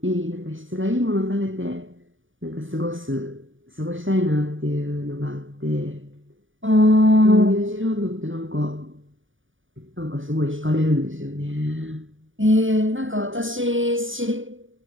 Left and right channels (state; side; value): late; left; 0.57 ms